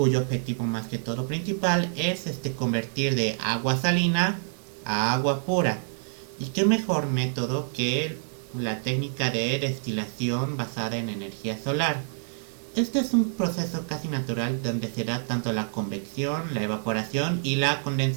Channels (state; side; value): silent; left; 58 dB below the other